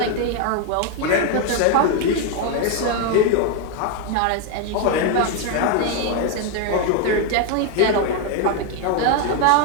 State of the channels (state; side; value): different; both; correlation 0.01